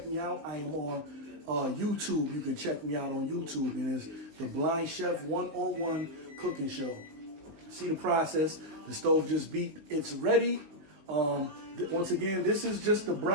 me out. I am on YouTube, you can check me out on YouTube, and it's the Blind Chef 101 Cooking Show. See the process, the stove just beat, it's ready. Once again, this is just the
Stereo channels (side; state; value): left; late; 19 ms